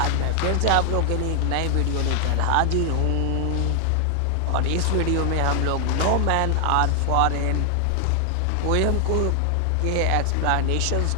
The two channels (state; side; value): different; both; correlation 0.00